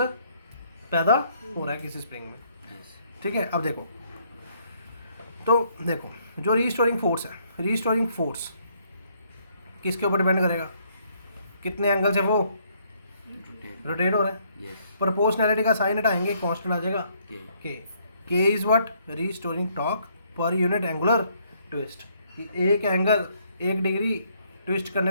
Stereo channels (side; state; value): both; inverted; correlation -0.68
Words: पैदा हो रहा है किसी स्प्रिंग में। Yes. ठीक है, अब देखो, तो देखो जो रीस्टोरिंग फोर्स है, रीस्टोरिंग फोर्स किसके ऊपर डिपेंड करेगा? कितने एंगल से वो Rotate. रोटेट हो रहा है। Yes. प्रोपोर्शनैलिटी का साइन हटाएंगे, कांस्टेंट आ जाएगा K. के is what? Restoring torque per unit angular twist. एक एंगल एक डिग्री ट्विस्ट